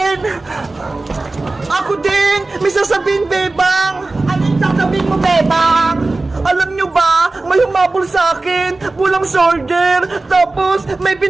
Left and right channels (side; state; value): left; quieter; 3.2 dB